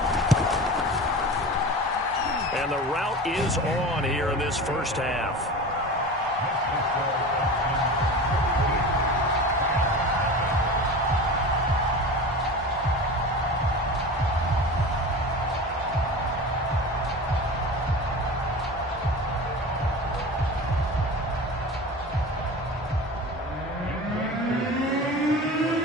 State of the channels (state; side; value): normal; both; correlation 0.32